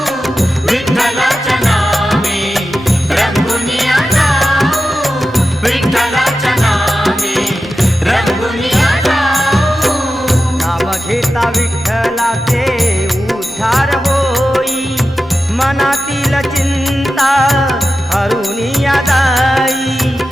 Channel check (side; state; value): both; normal; correlation 0.92